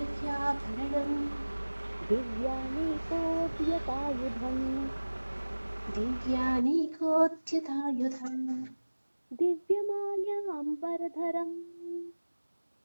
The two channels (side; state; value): both; inverted; correlation -1.00